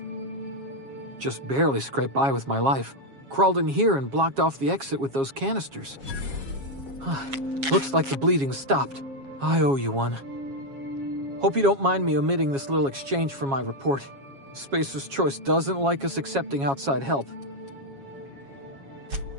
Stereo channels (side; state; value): left; late; 7.3 ms